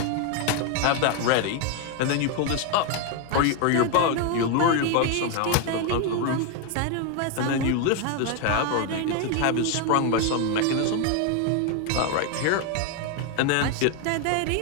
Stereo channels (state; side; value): different; both; correlation 0.01